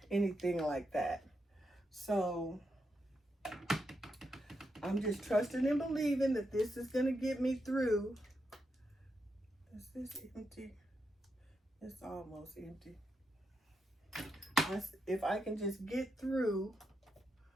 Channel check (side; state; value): both; normal; correlation 0.84